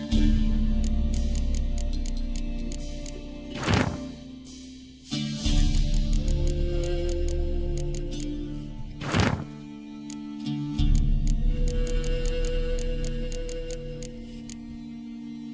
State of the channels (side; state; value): both; identical; correlation 1.00